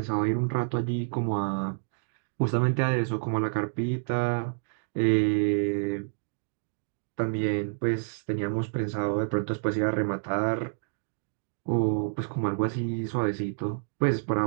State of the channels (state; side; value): silent; left; digital silence